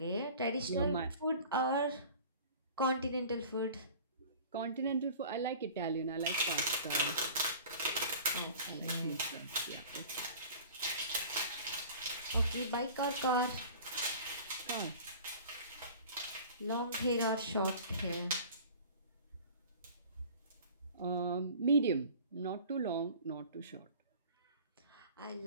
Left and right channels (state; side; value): inverted; both; correlation -0.43